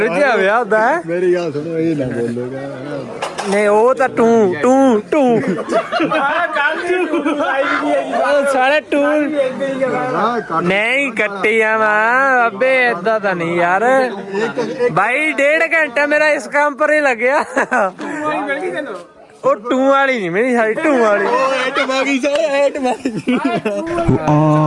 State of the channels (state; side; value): identical; both; correlation 1.00